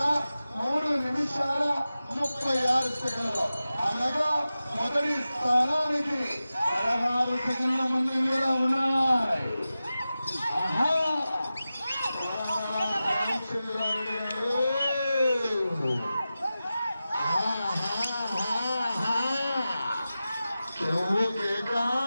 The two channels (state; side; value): inverted; both; correlation -0.94